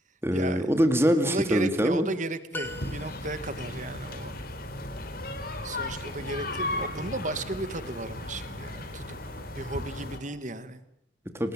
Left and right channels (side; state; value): both; normal; correlation 0.62